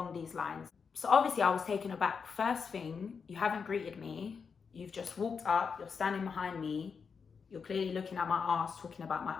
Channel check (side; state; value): right; quieter; 5.8 dB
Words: these lines. So obviously I was taken aback. First thing, you haven't greeted me. You've just walked up, you're standing behind me, you're clearly looking at my ass, talking about my